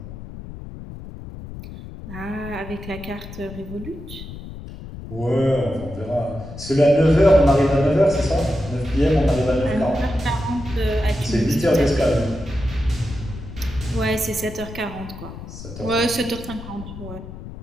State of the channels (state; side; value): noise; left; rumble, 12 dB below the sound